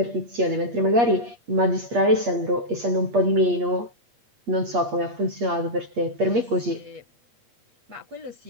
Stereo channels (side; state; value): left; late; 8.5 ms